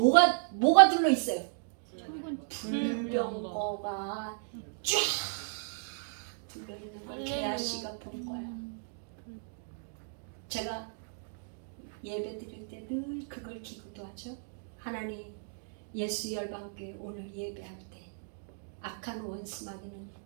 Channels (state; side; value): silent; left; digital silence